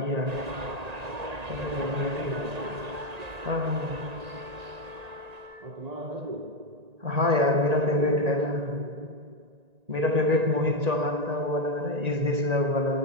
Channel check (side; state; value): left; late; 1.9 ms